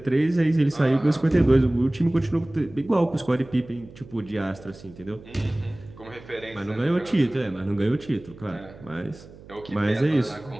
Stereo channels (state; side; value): noise; right; hum, 20 dB below the sound